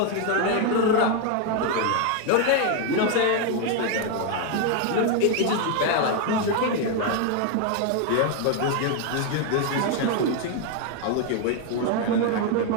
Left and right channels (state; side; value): different; both; correlation 0.01